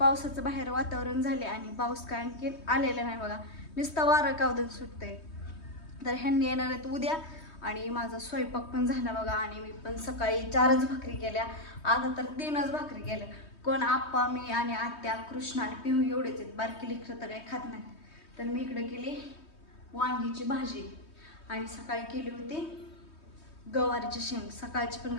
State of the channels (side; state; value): right; late; 3.2 ms